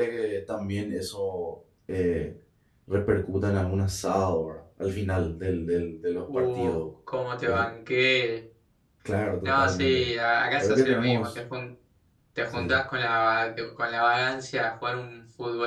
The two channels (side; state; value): both; identical; correlation 1.00